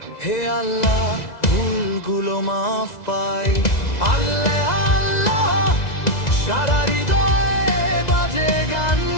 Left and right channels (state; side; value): late; right; 2.0 ms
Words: হে আল্লাহ ভুলগুলো মাফ পাই। আল্লাহ আল্লাহ সারা হৃদয়ে বাজে গান,